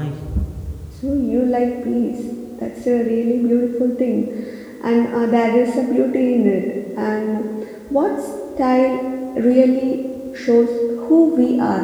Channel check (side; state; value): both; identical; correlation 1.00